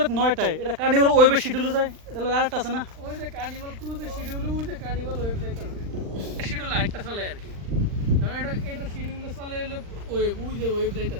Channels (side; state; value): left; late; 39 ms